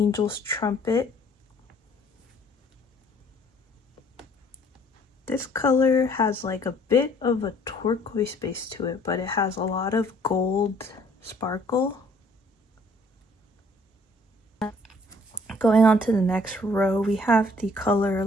Trumpet. This color has like a bit of a turquoise base to it, but it has a lot of gold sparkle. Going on to the next row, we have the color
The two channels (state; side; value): normal; both; correlation 0.59